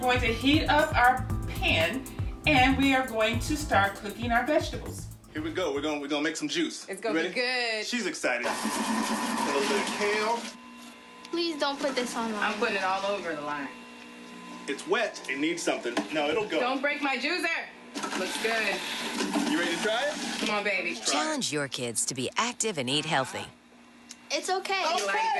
to heat up our pan, and we are going to start cooking our vegetables. Here we go. We're gonna make some juice. It's gonna be good. She's excited. A little bit of kale. Please don't put this on line. I'm putting it all over the line. It's wet. It needs something. No, it'll go. Don't break my juicer. Looks good. You ready to try it? Come on, baby. Challenge your kids to be active and eat healthy. It's okay. You like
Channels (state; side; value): identical; both; correlation 1.00